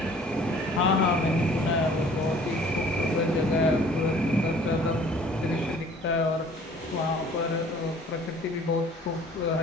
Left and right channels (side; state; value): both; normal; correlation 0.52